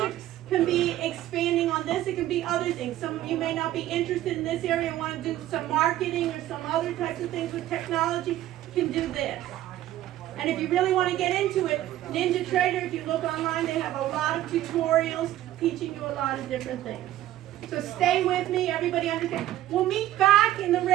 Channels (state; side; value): quieter; left; 13.8 dB